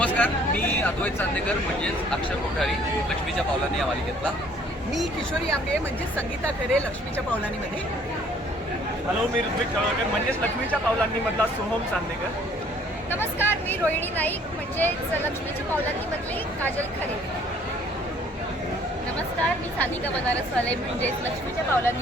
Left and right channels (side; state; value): both; normal; correlation 0.59